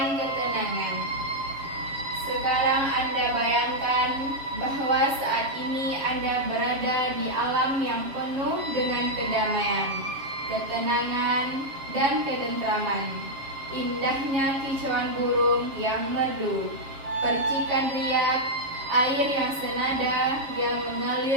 ketenangan. Sekarang Anda bayangkan bahwa saat ini Anda berada di alam yang penuh dengan kedamaian, ketenangan, dan ketentraman. Indahnya kicauan burung yang merdu, percikan riak, air yang senada yang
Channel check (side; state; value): left; late; 7.5 ms